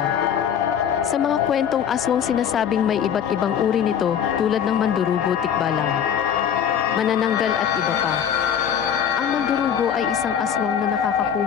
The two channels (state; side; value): quieter; right; 8.5 dB